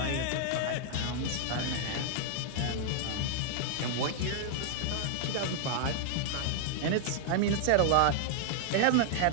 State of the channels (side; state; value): both; different; correlation 0.00